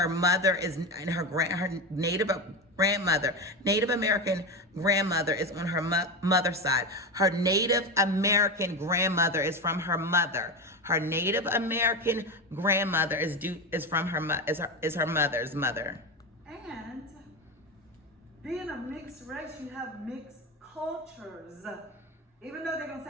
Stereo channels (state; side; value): normal; both; correlation 0.18